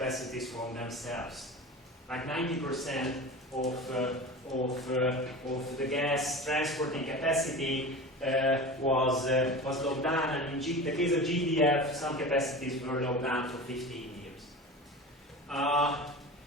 from themselves. Like 90% of the gas transporting capacity was locked down, and in the case of GDF, some capacities were locked down for 15 years.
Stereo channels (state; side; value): normal; both; correlation 0.32